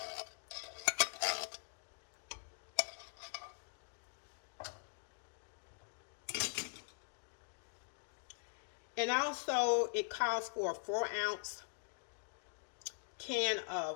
And also it calls for a 4-ounce can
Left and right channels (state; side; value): silent; right; digital silence